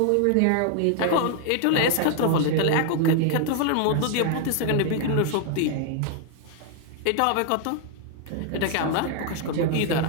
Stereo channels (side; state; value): both; different; correlation 0.00